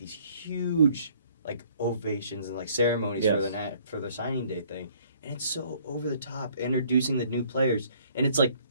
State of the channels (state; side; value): inverted; both; correlation -0.60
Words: huge like ovations and like ceremonies for their signing day thing, and it's so over the top introducing the new players, and it's like,